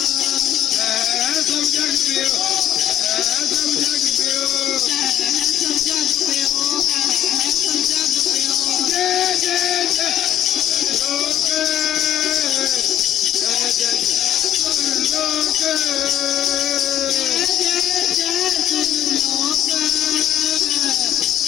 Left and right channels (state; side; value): quieter; right; 11.3 dB